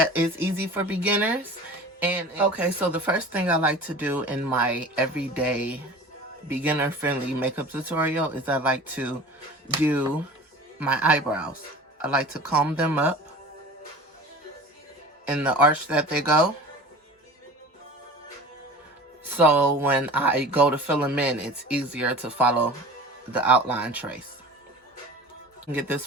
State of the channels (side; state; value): both; normal; correlation 0.38